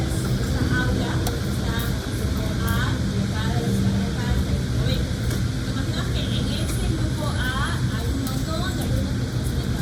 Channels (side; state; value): both; identical; correlation 1.00